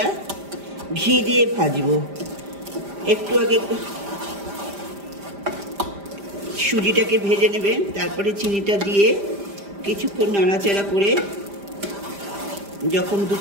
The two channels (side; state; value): left; late; 5.0 ms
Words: ঘি দিয়ে ভাজবো। একটু আগে সুজিটাকে ভেজে নেবেন, তারপরে চিনিটা দিয়ে কিছুক্ষণ নাড়াচাড়া করে যখন